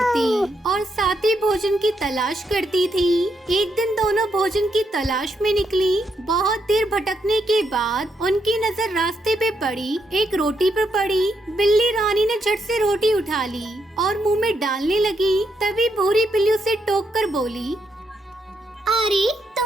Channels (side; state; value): both; normal; correlation 0.79